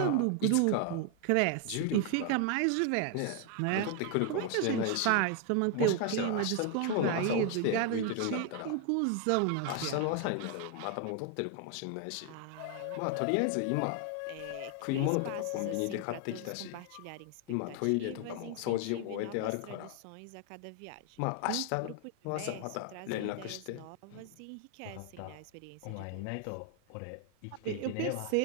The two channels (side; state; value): both; different; correlation 0.00